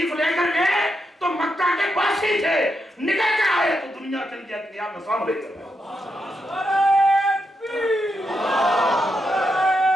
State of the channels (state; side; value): normal; both; correlation 0.83